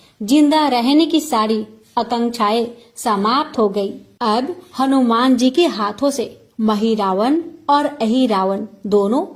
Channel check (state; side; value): identical; both; correlation 1.00